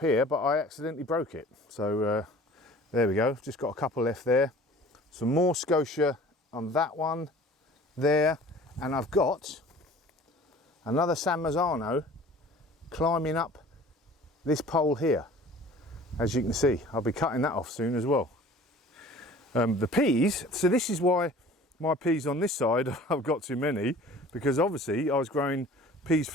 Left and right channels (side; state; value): both; normal; correlation 0.46